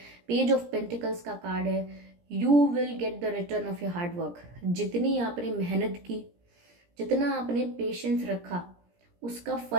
पेज ऑफ पेंटिकल्स का कार्ड है। You will get the return of your hard work. जितनी आपने मेहनत की, जितना आपने पेशेंस रखा, उसका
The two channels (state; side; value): late; left; 17 ms